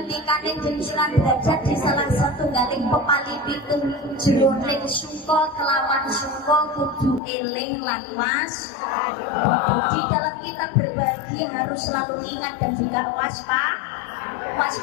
jenengan derajat di salah satu galing pepali pitung jroning sungko kelawan sungko kudu eling lan di dalam kita berbagi harus selalu ingat dan juga waspada.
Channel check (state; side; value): drops out; right; at 7.2 s